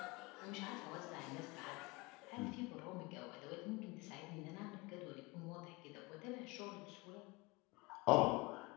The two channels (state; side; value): quieter; right; 24.3 dB